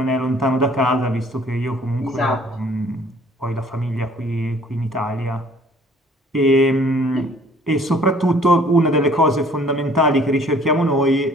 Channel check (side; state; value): both; normal; correlation 0.56